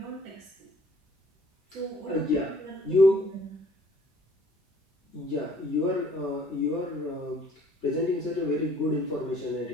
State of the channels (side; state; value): both; normal; correlation 0.57